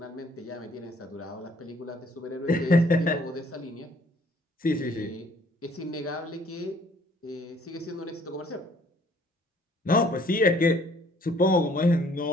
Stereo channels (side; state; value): both; normal; correlation 0.60